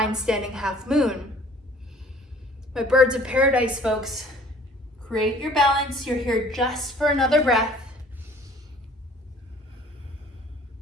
standing half moon. My birds of paradise folks, create your balance. You're here just for another breath.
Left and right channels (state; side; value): normal; both; correlation 0.52